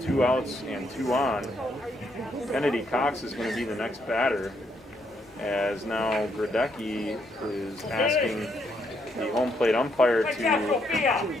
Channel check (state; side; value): normal; both; correlation 0.75